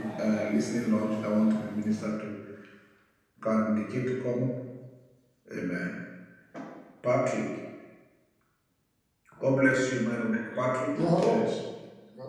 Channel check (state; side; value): identical; both; correlation 1.00